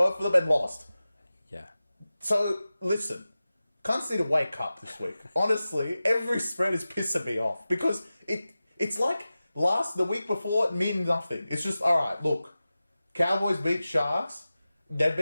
of them and lost. Yeah. So, listen. Cunts need to wake up this week. Honestly, every spread is pissing me off. Because it's like the week before, it means nothing. It's just, alright, look. Cowboys beat Sharks. They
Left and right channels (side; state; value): both; inverted; correlation -0.95